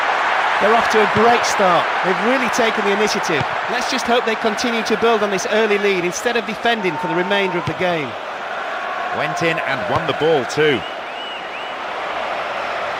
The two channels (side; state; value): both; identical; correlation 1.00